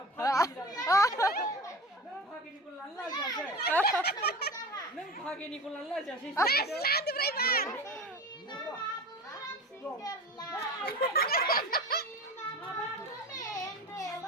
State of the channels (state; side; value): normal; both; correlation 0.32